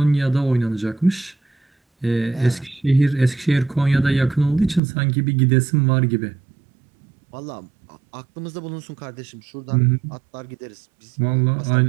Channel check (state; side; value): drops out; left; at 4.8 s